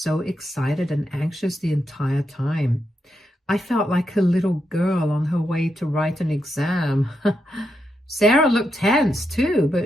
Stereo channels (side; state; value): both; normal; correlation 0.84